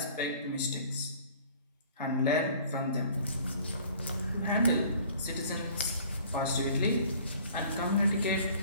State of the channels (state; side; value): inverted; both; correlation -0.51